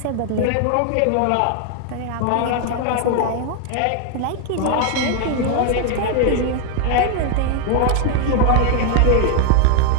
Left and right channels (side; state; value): both; different; correlation 0.00